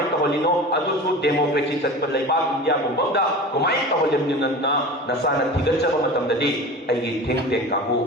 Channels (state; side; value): normal; both; correlation 0.34